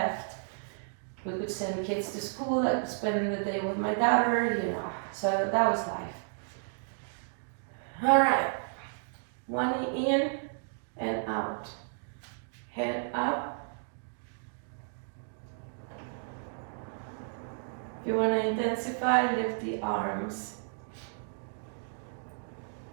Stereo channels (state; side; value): silent; left; digital silence